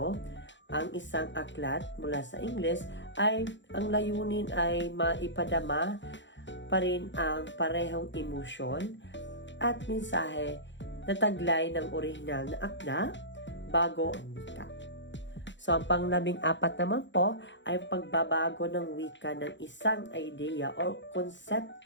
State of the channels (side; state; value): right; late; 0.53 ms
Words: ang isang aklat mula sa Ingles ay ang layunin ay maipadama pa rin ang parehong emosyon at mensahe na taglay ng orihinal na akda bago ang wika. So, ang pang-14 naman po ay pagbabago ng wika ng isang idea o